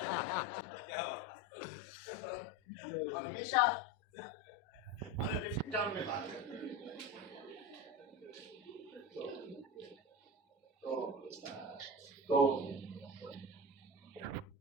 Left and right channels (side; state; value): both; normal; correlation 0.24